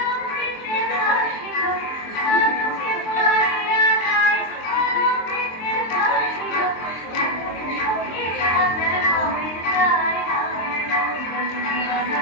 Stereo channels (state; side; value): late; right; 23 ms